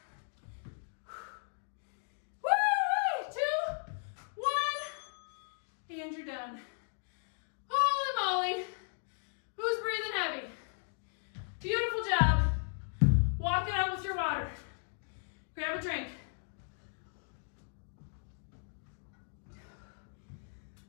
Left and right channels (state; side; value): silent; right; digital silence